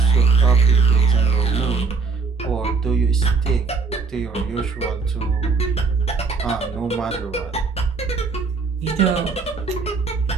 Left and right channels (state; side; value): quieter; left; 4.6 dB